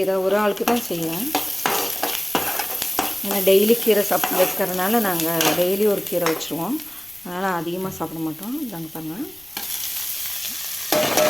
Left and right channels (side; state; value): left; noise; rumble, 30 dB below the sound